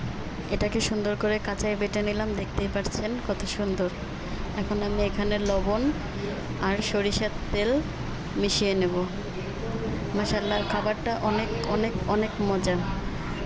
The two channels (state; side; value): identical; both; correlation 1.00